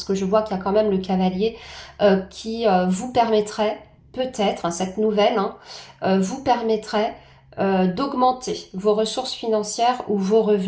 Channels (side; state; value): both; identical; correlation 1.00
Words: que je vois qu'il y a quand même le cavalier qui vous permettrait, peut-être, hein, cette nouvelle, hein, vous permettrait d'augmenter vos ressources financières ou vos